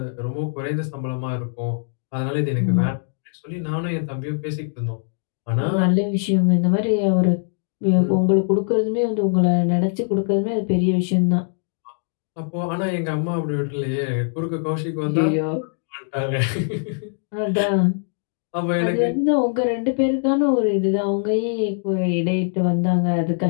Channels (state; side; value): silent; right; digital silence